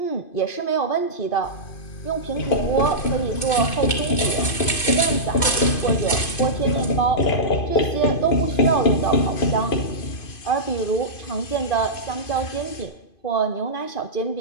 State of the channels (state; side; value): late; right; 2.5 ms